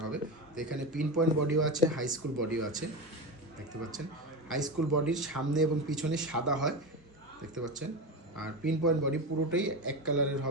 হবে। তো এখানে পিন পয়েন্ট বডিও আছে, হাই স্কুল বডিও আছে, দেখতে পাচ্ছেন। হাই স্কুল বডির সামনে এবং পিছনে সাদা হয়, দেখতে পাচ্ছেন। আর পিন পয়েন্ট বডি পুরোটাই এক কালারের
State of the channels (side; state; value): both; normal; correlation 0.20